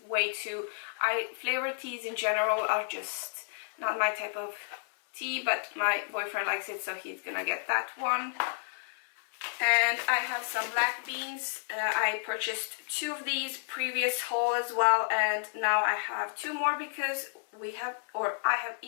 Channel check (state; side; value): silent; right; digital silence